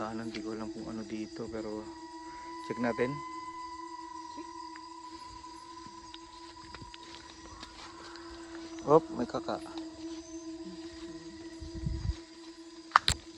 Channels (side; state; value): both; identical; correlation 1.00